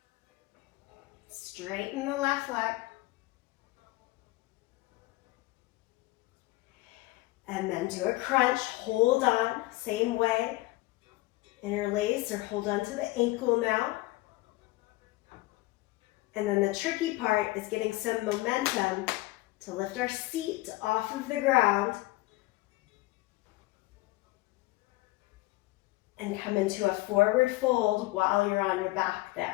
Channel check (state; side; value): quieter; right; 20.2 dB